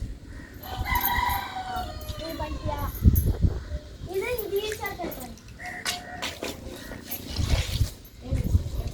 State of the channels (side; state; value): both; identical; correlation 1.00